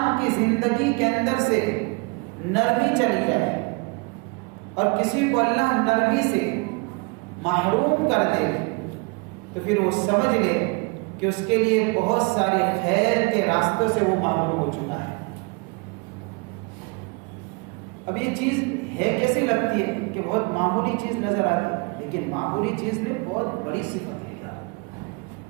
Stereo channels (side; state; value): left; quieter; 30.6 dB